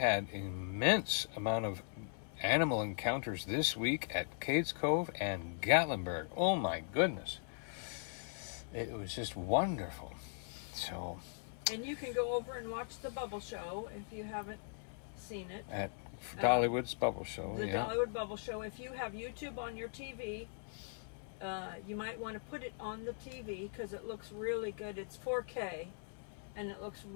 immense amount of animal encounters this week at Cades Cove and Gatlinburg. Oh my goodness. It was just wonderful. So. And you can go over and watch the Bubble Show if you haven't seen it. At Dollywood's Bubble Show. The Dollywood Bubble Show. If you have YouTube on your TV, you might want to put it on the TV because it looks really good. It's 4K, and it looks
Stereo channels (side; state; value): right; silent; 52 dB below the other